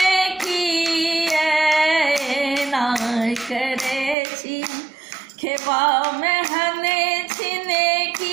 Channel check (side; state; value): left; drops out; at 4.2 s